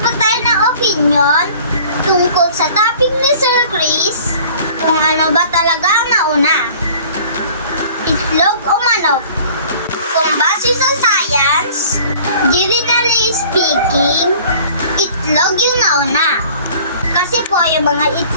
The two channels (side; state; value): both; inverted; correlation -0.49